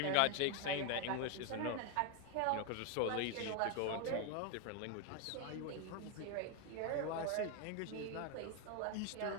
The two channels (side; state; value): both; different; correlation 0.01